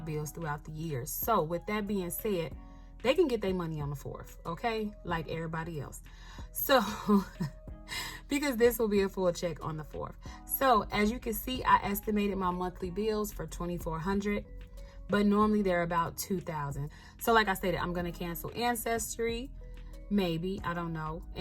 bills throughout the years. So with that being said, they can get their money on the 4th, okay? Like everybody else. So, because this will be a full check on the 4th. So as you can see, I estimated my monthly bills for $2,400, but normally they're about $2,000. So like I stated, I'm going to cancel Ancestry, maybe, I don't know,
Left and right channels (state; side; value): identical; both; correlation 1.00